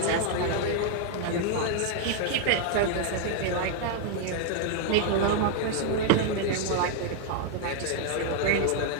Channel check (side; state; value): both; different; correlation 0.00